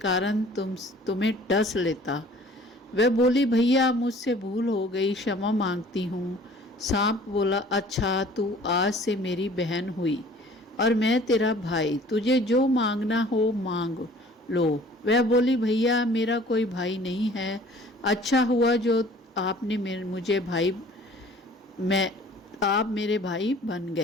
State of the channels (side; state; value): both; normal; correlation 0.51